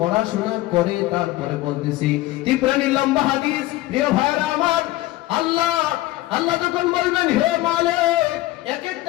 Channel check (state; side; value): quieter; right; 17.3 dB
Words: পড়াশোনা করে তারপরে বলতেছি। তিপ্রানি লম্বা হাদিস, প্রিয় ভাইরা আমার। আল্লাহ যখন বলবেন, হে মালিক এক